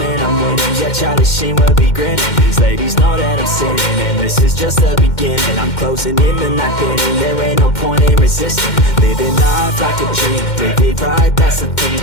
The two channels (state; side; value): late; right; 2.1 ms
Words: I'm winning. Yeah, Charlie Sheen will be grinning. These ladies know that I'm sinning, and this is just the beginning. I'm closing in the ninth inning, there ain't no point in resisting. Living life like a dream, live it right, that's the thing.